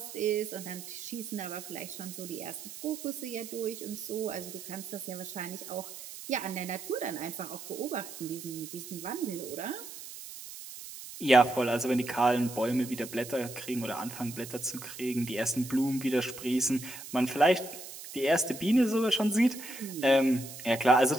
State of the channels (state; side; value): noise; right; hiss, 12 dB below the sound